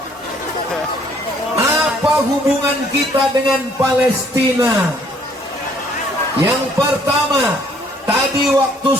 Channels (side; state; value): both; normal; correlation 0.62